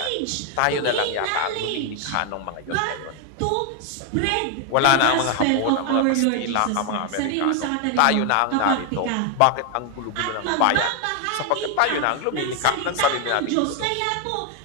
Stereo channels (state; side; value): different; both; correlation 0.01